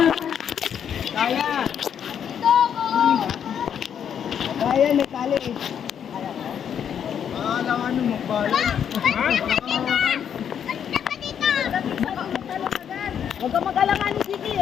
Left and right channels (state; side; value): quieter; right; 8.4 dB